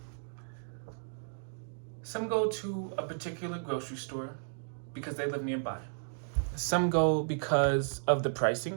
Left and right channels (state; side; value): silent; left; digital silence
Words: Some go to a particular grocery store because they live nearby. Some go because of the